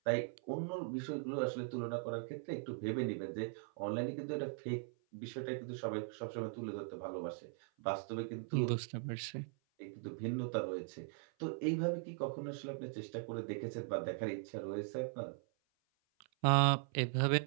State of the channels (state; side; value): silent; left; 51 dB below the other